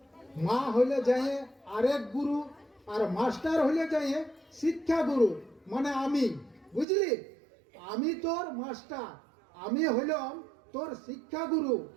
মা হলে যায় আরেক গুরু, আর মাস্টার হলে যায় শিক্ষা গুরু, মানে আমি। বুঝলি? আমি তোর মাস্টার, আমি হলাম তোর শিক্ষা গুরু।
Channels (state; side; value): drops out; left; at 6.9 s